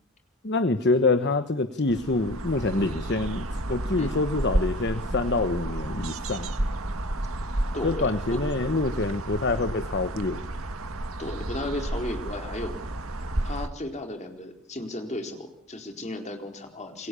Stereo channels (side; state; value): both; normal; correlation 0.40